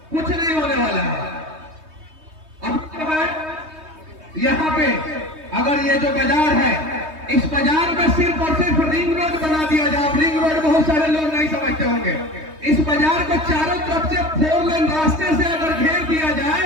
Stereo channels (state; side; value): late; left; 3.2 ms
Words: कुछ नहीं होने वाला है। अब यहाँ पे अगर ये जो बाजार है, इस बाजार में सिर्फ और सिर्फ रिंग रोड बना दिया जाए। रिंग रोड बहुत सारे लोग नहीं समझते होंगे। इस बाजार को चारों तरफ से 4 लेन रास्ते से अगर घेर दिया